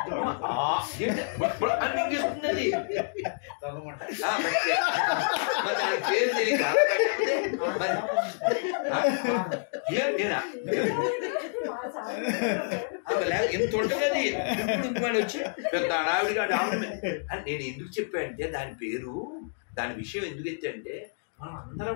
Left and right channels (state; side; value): silent; right; digital silence